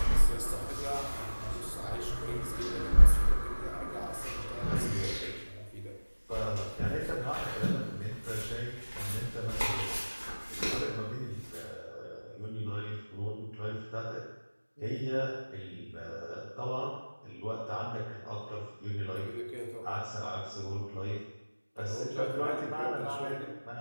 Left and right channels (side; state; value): both; inverted; correlation -1.00